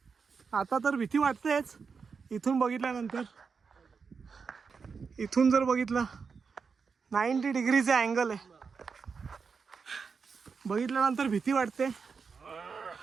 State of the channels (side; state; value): left; quieter; 5.4 dB